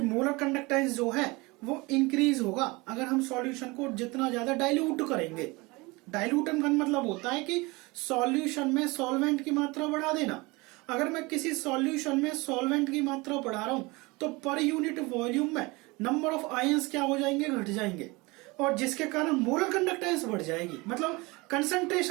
मोलर कंडक्टेंस जो है वो इंक्रीज होगा अगर हम सॉल्यूशन को जितना ज्यादा डाइल्यूट करेंगे। डाइल्यूटन का मतलब होता है कि सॉल्यूशन में सॉल्वेंट की मात्रा बढ़ा देना। अगर मैं किसी सॉल्यूशन में सॉल्वेंट की मात्रा बढ़ा रहा हूं तो पर यूनिट वॉल्यूम में नंबर ऑफ आयंस क्या हो जाएंगे, घट जाएंगे, और जिसके कारण मोलर कंडक्टेंस बढ़ जाएगी, मतलब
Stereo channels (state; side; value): quieter; left; 24.3 dB